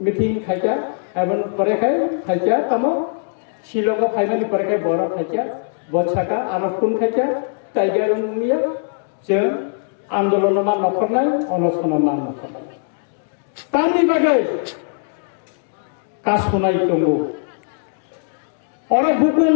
मीटिंग खाइजा एबन परे खाइजा तमो शिलंग फाइनाली परे खाइ बरो खाइजा बछाका आनफुन खाइजा टाइगर मिया जों आंदोलन मा नखरनाय अनसन मा नखरनाय तानि बागै कासनाय दंगो और बुकुन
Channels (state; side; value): silent; right; digital silence